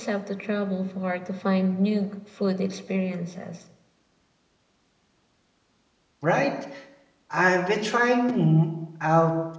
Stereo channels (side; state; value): both; identical; correlation 1.00